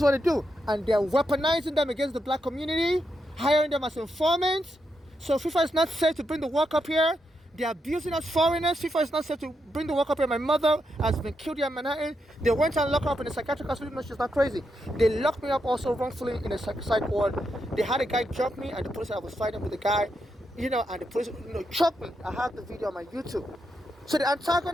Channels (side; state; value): both; normal; correlation 0.83